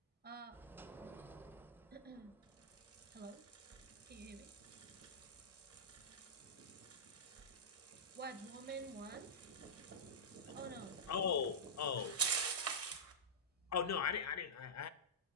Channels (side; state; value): both; normal; correlation -0.13